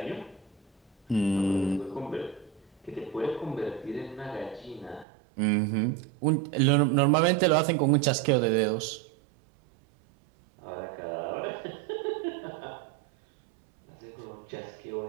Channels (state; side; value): drops out; left; at 5.1 s